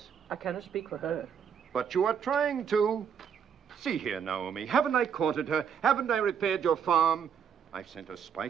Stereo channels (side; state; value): left; quieter; 7.5 dB